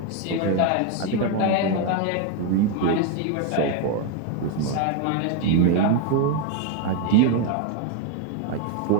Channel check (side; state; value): both; different; correlation 0.01